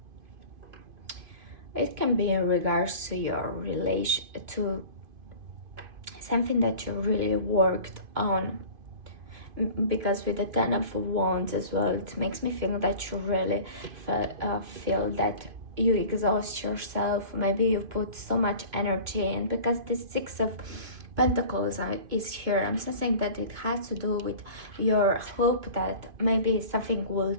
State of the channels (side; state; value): left; late; 2.5 ms